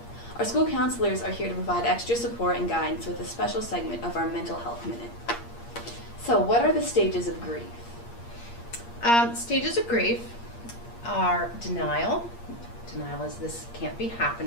Our school counselors are here to provide extra support and guidance with a special segment of our Mental Health Minute. So, what are the stages of grief? Stages of grief are denial. Denial is this can't be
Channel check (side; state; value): right; late; 8.6 ms